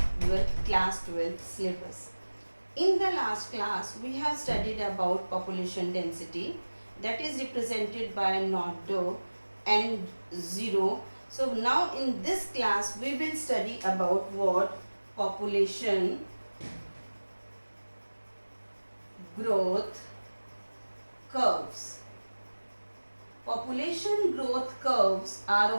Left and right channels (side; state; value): both; inverted; correlation -1.00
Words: your class 12 syllabus. In the last class, we have studied about population density that is represented by not dou and 0. So now in this class, we will study about what population growth curves. Population growth curves are